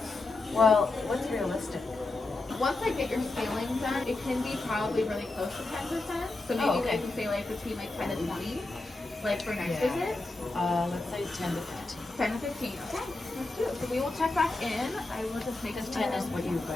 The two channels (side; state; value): right; quieter; 3.1 dB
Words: well, what's realistic? Once I get your scaling done, it can be probably really close to 10%. So maybe I can say like between like 10 to 20, like for next visit. Let's say 10 to 15. 10 to 15. Okay, let's do it. So we will check back in. I will just make 10 is what you